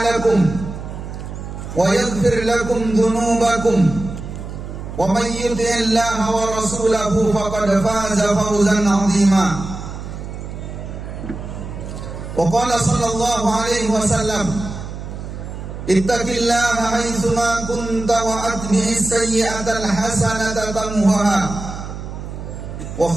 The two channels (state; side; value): noise; right; hum, 9 dB below the sound